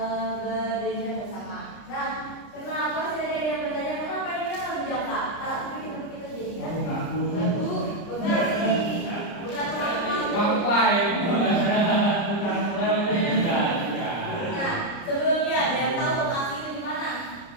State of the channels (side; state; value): right; late; 30 ms